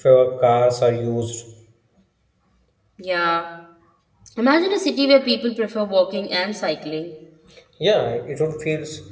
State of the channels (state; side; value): identical; both; correlation 1.00